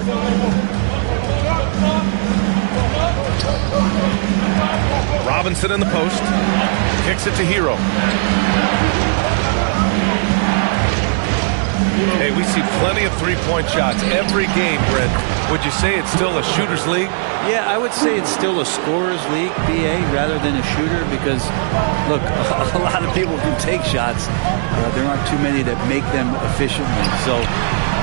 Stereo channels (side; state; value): left; silent; 62 dB below the other